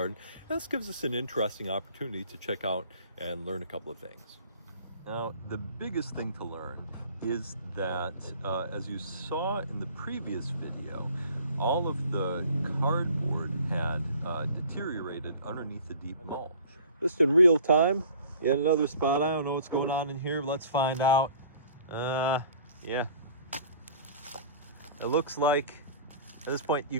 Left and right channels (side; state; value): both; inverted; correlation -0.48